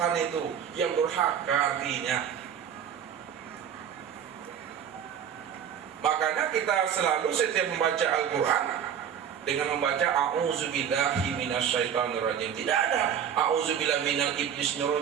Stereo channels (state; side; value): quieter; left; 8.5 dB